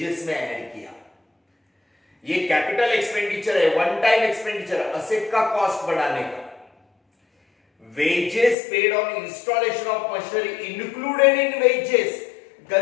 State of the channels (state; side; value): drops out; right; at 8.6 s